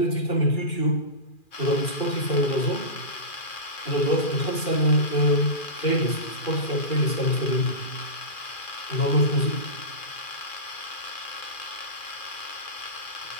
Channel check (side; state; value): right; late; 2.4 ms